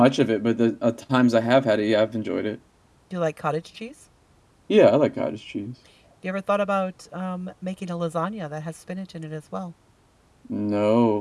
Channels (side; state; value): both; identical; correlation 1.00